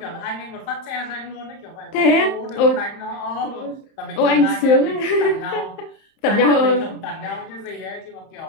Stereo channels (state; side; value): late; right; 31 ms